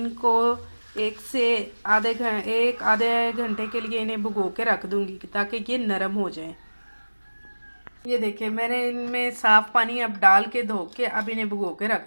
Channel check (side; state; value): both; inverted; correlation -1.00